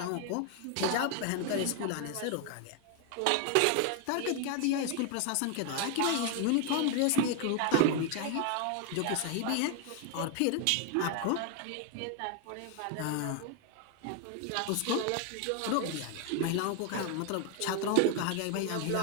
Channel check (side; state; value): both; different; correlation 0.00